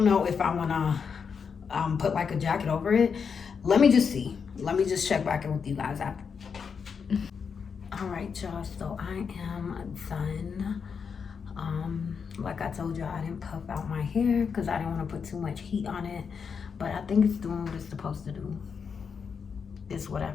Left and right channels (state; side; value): quieter; right; 6.2 dB